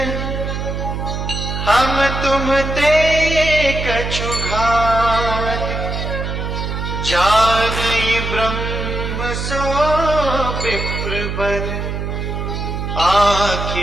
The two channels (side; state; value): right; noise; hum, 4 dB below the sound